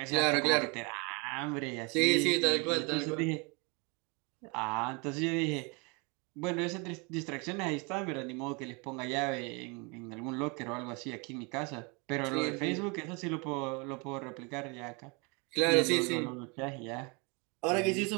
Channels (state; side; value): quieter; left; 30.9 dB